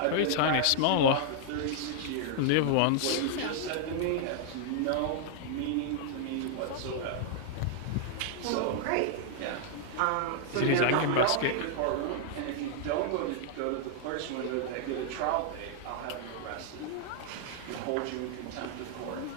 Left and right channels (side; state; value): both; different; correlation 0.00